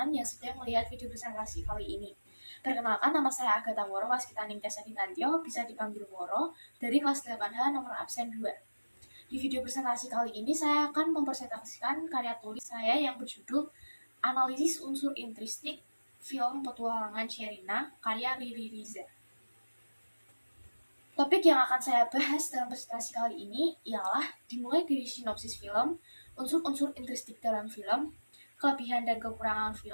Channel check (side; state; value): both; inverted; correlation -1.00